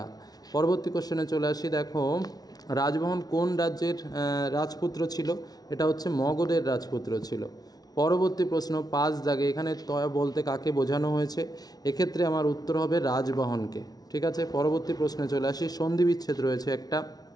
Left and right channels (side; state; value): right; late; 0.19 ms